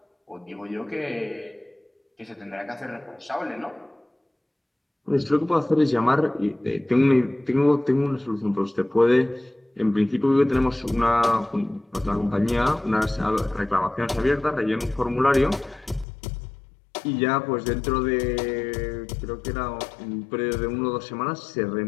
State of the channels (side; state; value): right; drops out; at 16.1 s